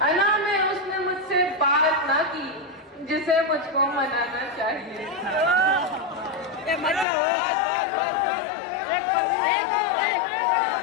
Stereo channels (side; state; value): right; drops out; at 7.1 s